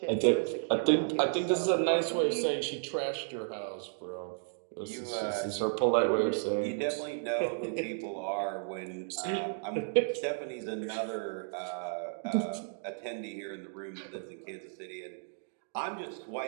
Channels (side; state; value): left; silent; digital silence